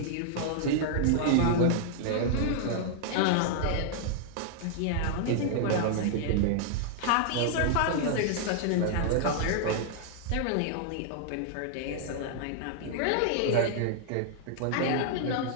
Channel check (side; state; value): both; different; correlation -0.01